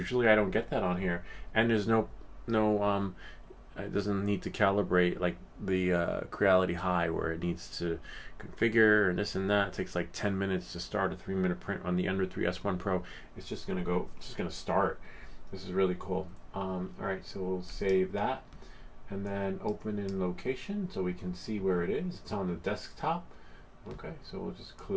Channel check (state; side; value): identical; both; correlation 1.00